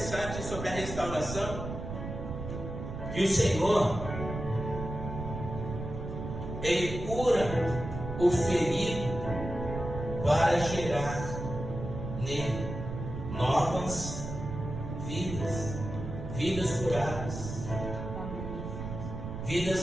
sobre a restauração, que o Senhor, Ele cura o ferido para gerar nele novas vidas, vidas curadas,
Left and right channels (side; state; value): right; noise; rumble, 7 dB below the sound